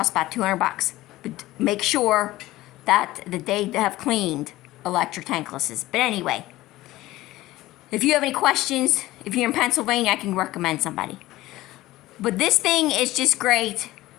about $200. But make sure that they have cleaned electric tanklesses. But anyway, if you have any questions, if you're in Pennsylvania, I can recommend somebody. But this thing is just great.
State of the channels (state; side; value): quieter; right; 17.1 dB